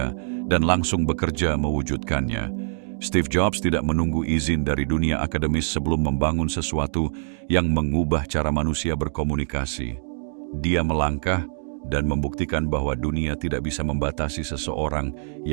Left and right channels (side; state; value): left; silent; digital silence